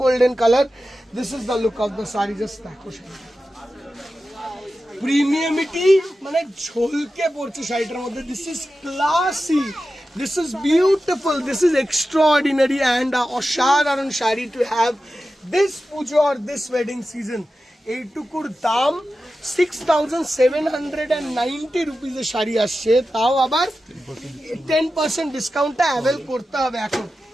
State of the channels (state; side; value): normal; both; correlation 0.93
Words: golden colour. This is the look of the sari, just দেখো শাড়ি। প্রিমিয়ামিটি মানে ঝলকে পড়ছে শাড়িটার মধ্যে। This is classy, This is beautiful. This is extraordinary and অসাধারণ sari to have this pujo or this wedding season. এইটুকুর দাম 6,790 রুপিসের শাড়ি আসছে, তাও আবার 10% ডিসকাউন্টটা অ্যাভেল করতে হবে এখন।